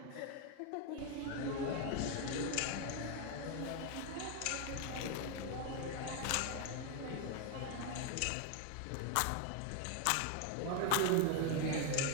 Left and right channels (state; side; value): different; both; correlation 0.01